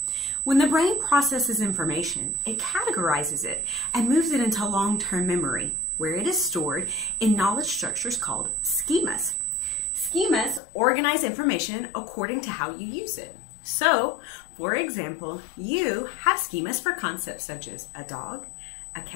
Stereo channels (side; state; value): right; drops out; at 10.6 s